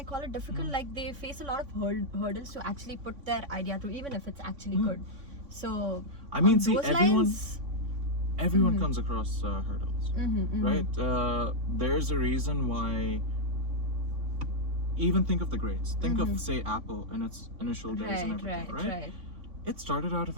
call it difficult? Like they face a lot of hurdles to actually put their idea through, even if it's actually good. So I mean, on see, those everyone comes across hurdles, right? There's a reason why. Even think of the greats. Think of, say, Apple in its initial days and everything, right? It started out of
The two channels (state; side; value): late; left; 3.5 ms